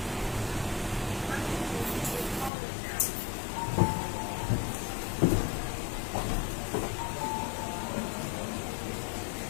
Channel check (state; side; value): drops out; right; at 2.5 s